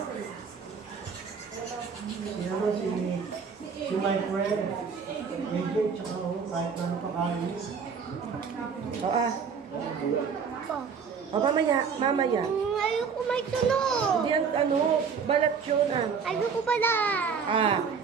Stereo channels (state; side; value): quieter; left; 6.1 dB